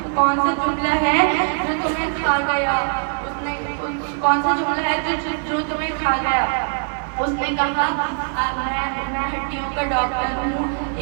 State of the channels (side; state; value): left; silent; digital silence